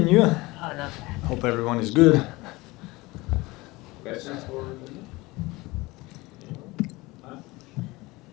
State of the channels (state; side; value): quieter; right; 21.8 dB